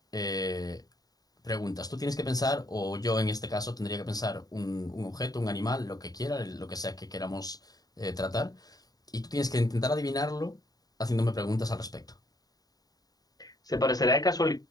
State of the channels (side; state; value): right; late; 0.18 ms